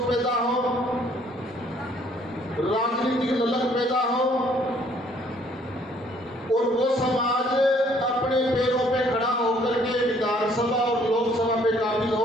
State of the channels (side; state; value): both; normal; correlation 0.62